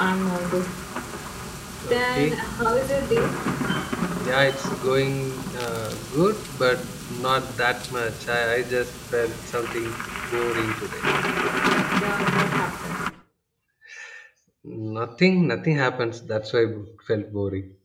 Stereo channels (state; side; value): identical; both; correlation 1.00